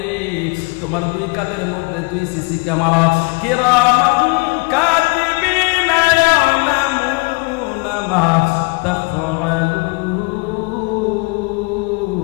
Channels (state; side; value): quieter; right; 29.8 dB